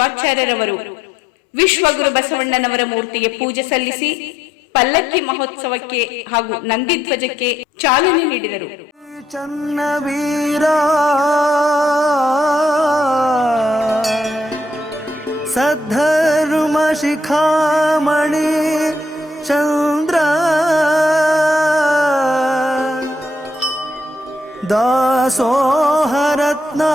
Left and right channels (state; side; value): normal; both; correlation 0.74